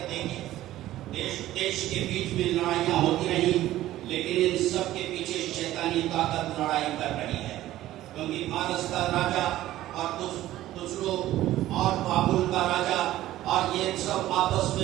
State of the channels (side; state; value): left; quieter; 14.6 dB